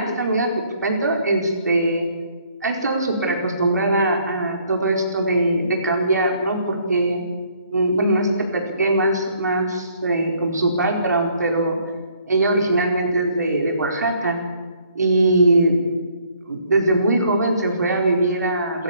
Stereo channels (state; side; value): inverted; both; correlation -0.64